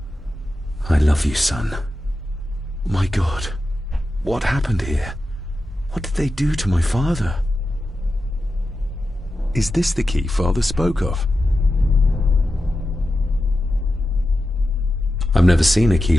I love you, son. My God, what happened here? What did they do to my father? Is this the key Father spoke of? I've never seen a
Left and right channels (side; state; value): both; normal; correlation 0.91